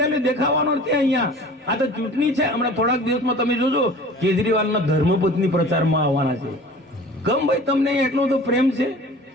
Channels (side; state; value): both; normal; correlation 0.43